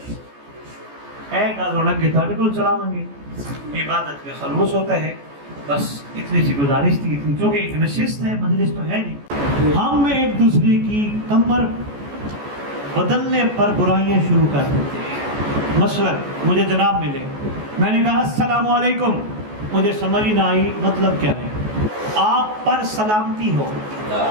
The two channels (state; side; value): late; left; 14 ms